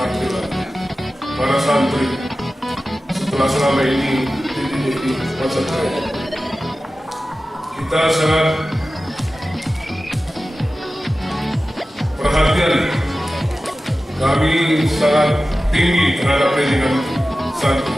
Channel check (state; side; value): normal; both; correlation 0.95